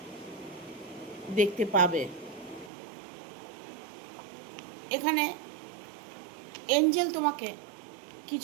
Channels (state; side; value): drops out; left; at 2.7 s